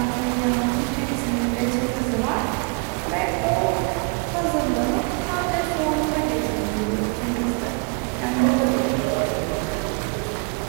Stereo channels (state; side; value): quieter; left; 32.0 dB